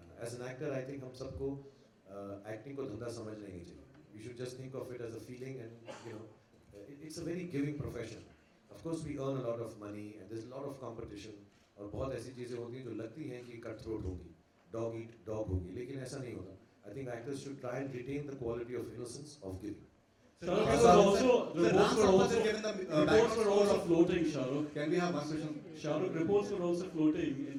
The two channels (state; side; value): identical; both; correlation 1.00